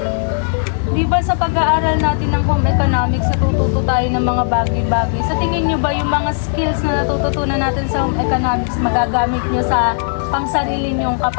Di ba sa pag-aaral natin ng home economics, natututo tayo ng mga bagay-bagay. Sa tingin nyo ba yung mga skills na natututunan natin sa home economics, magagamit nyo sa pangsarili nyong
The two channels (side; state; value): right; silent; digital silence